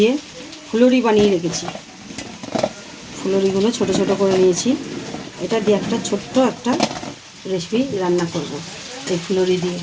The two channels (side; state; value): both; identical; correlation 1.00